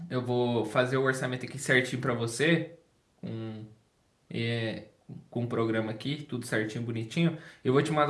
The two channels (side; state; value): both; identical; correlation 1.00